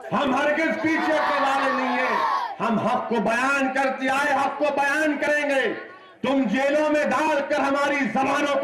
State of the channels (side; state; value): both; identical; correlation 1.00